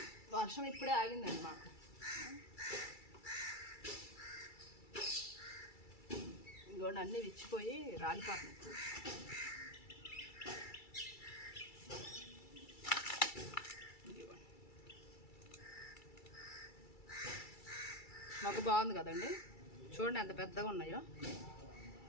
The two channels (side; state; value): right; late; 2.3 ms